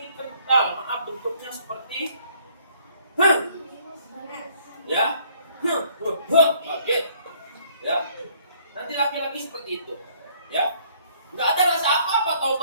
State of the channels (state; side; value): inverted; both; correlation -0.62